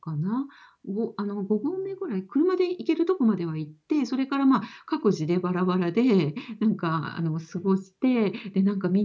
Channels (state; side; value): identical; both; correlation 1.00